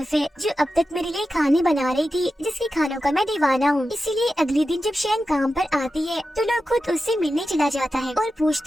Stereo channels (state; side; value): normal; both; correlation 0.91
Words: है जो अब तक मेरे लिए खाने बना रही थी, जिसके खानों का मैं दीवाना हूँ। इसीलिए अगले दिन जब शेंग काम पर आती है तो लोग खुद उससे मिलने चला जाता है और